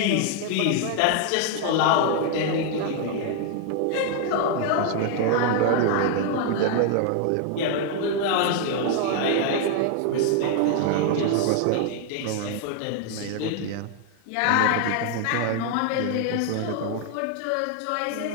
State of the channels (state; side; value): different; both; correlation 0.00